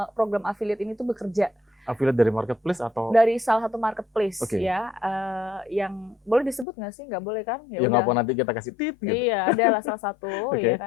program affiliate ini tuh bekerja. Affiliate dari marketplace atau? Dari salah satu marketplace ya, yang boleh disebut nggak sih? Nggak boleh kan? Ya nggak apa, nanti kita kasih tip gitu. Iya, adalah salah satu ya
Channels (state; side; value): drops out; right; at 6.7 s